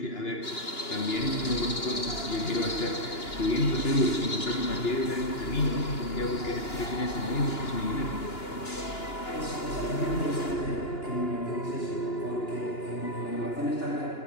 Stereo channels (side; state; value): right; late; 2.9 ms